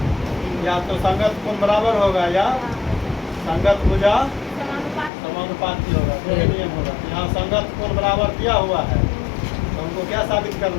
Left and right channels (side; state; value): right; drops out; at 5.1 s